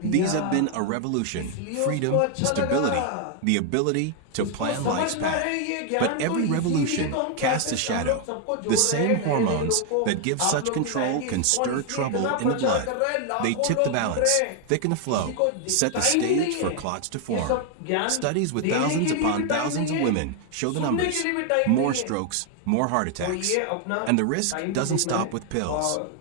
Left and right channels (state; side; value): different; both; correlation 0.00